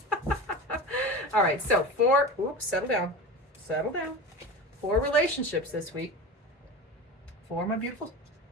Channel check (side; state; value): both; normal; correlation 0.29